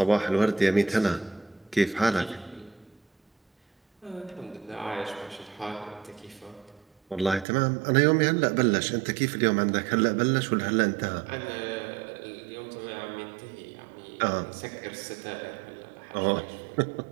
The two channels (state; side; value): drops out; left; at 7.5 s